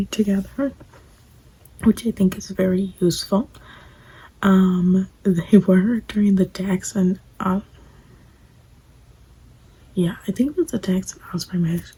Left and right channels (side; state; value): both; identical; correlation 1.00